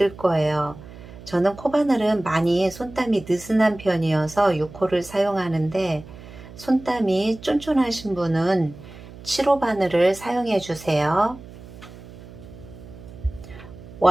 거예요. 저는 코바늘은 많이 손땀이 느슨한 편이어서 6호를 사용하는데 손땀이 쫀쫀하신 분은 7호 바늘을 사용해 주세요.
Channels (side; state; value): right; noise; hum, 17 dB below the sound